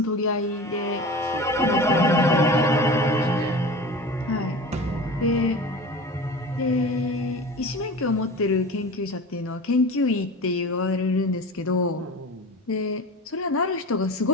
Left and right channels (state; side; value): normal; both; correlation 0.34